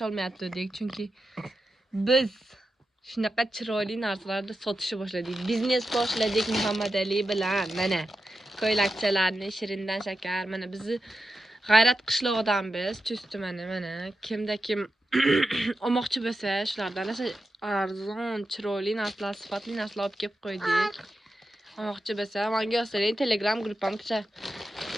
chunki biz shunaqa chiroyli narsalarni sotishni boshladik. Biznes boshladik Muhammadali bilan. Mana ko'ylakchalarni Shirindan shakar. Mana bizni G'ayrat qishlog'idanmiz. Chustdi mana kimda kim olmoqchi bo'lsa, shulardan arzon, chiroyli narsalar, sifatli narsalar olib kelib qo'ydik. Olmoqchi bo'lsa, menga yozsang Telegram gruppamga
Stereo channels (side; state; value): both; normal; correlation 0.90